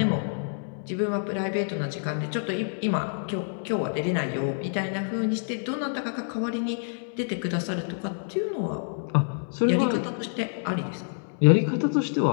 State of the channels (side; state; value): right; silent; 60 dB below the other